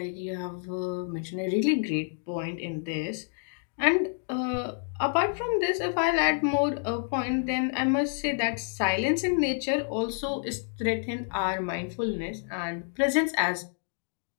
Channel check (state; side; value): silent; right; 59 dB below the other